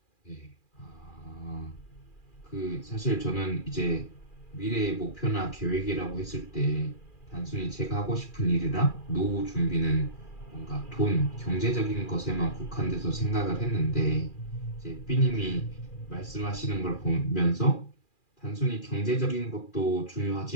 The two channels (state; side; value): late; right; 2.4 ms